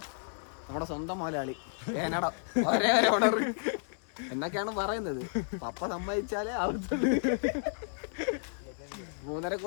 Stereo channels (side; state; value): right; silent; digital silence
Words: നമ്മുടെ സ്വന്തം മലയാളി ഏനട ഒരേ ഓർഡർ എന്നൊക്കെയാണ് പറയുന്നത്. പപ്പ സമ്മതിച്ചാലേ ആവത്തുള്ളൂ. 3.5